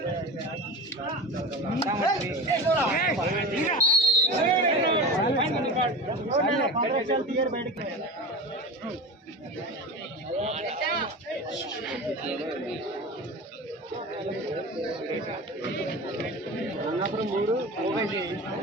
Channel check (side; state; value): both; normal; correlation 0.29